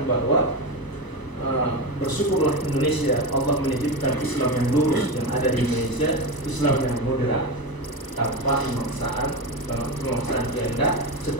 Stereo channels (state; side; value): late; right; 1.0 ms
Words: bahwa bersyukurlah Indonesia, Allah menitipkan Islam yang lurus yang ada di Indonesia, Islam yang moderat tanpa pemaksaan kehendak,